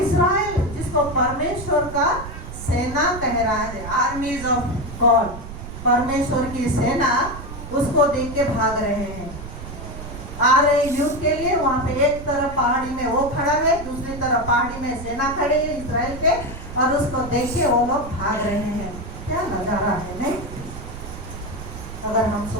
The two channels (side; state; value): right; noise; rumble, 11 dB below the sound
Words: जिसको परमेश्वर का सेना कह रहा है, आर्मीज ऑफ गॉड, परमेश्वर की सेना, उसको देख के भाग रहे हैं। आ रहे युद्ध के लिए। वहां पे एक तरफ पहाड़ी में वो खड़ा है, दूसरी तरफ पहाड़ी में सेना खड़ी है इस्राएल के। और उसको देख के वो लोग भाग रहे हैं। क्या नजारा है, नहीं? अगर हम